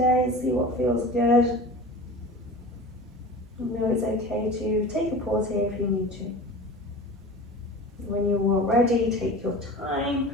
see what feels good. You know it's okay to take a pause here if you need to. When you're all ready, take your time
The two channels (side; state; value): both; normal; correlation 0.35